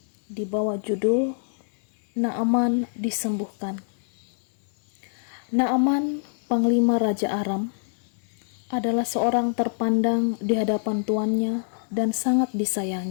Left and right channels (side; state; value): right; silent; digital silence